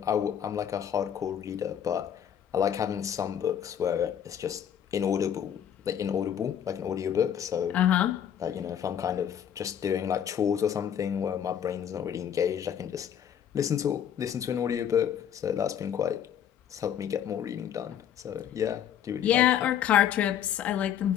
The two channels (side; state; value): right; quieter; 9.4 dB